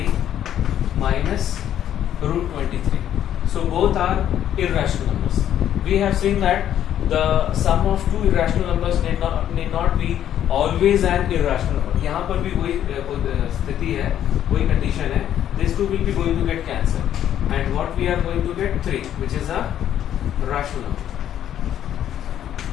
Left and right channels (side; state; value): right; quieter; 10.8 dB